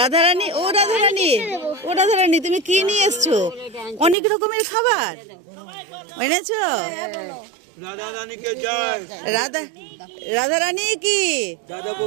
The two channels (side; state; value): left; drops out; at 4.2 s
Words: ও রাধারানী, ও রাধারানী, তুমি কি নিয়ে এসছো? অনেক রকমের খাবার এনেছো। রাধারানী কি